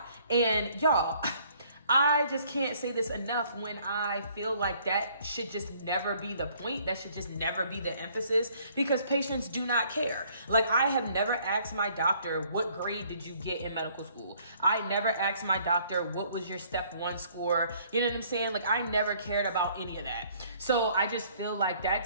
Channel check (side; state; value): both; inverted; correlation -0.61